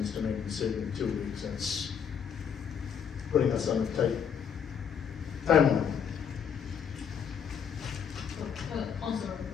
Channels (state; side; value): quieter; right; 7.6 dB